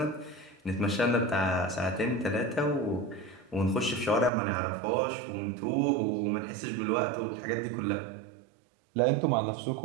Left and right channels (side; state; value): left; drops out; at 4.3 s